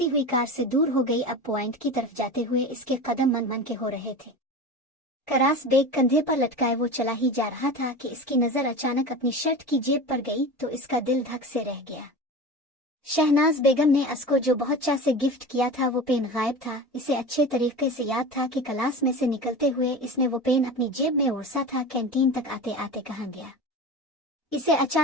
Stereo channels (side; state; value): both; normal; correlation 0.30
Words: हुई कार से दूर हो गई। अब पॉइंट की तरफ जाते हुए इसके कदम मन मन के हो रहे थे। करास बेग कंधे पर लटकाए वो चला ही जा रहा था कि इसकी नजर अचानक अपनी शर्ट की जेब पर गई तो इसका दिल धक से रह गया। शहनाज बेगम ने असको जो बहुत चाह से गिफ्ट किया था वो पेन गायब था। इसे अच्छे तरीके से याद था कि क्लास में से निकलते हुए इसने वो पेन अपनी जेब में ओरसा था। कैंटीन तक आते आते कहाँ गया। इसे